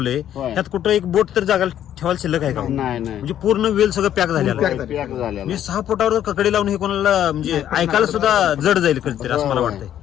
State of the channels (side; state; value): right; quieter; 10.9 dB